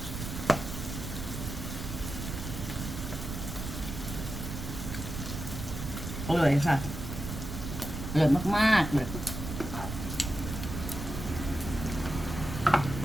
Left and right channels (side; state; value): right; noise; rumble, 6 dB below the sound